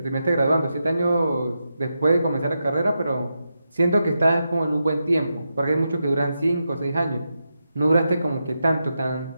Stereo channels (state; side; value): inverted; both; correlation -0.87